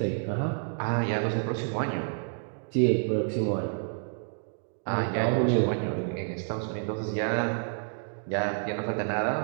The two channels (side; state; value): left; silent; digital silence